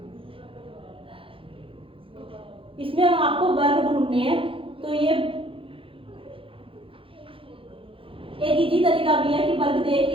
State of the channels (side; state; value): left; late; 0.26 ms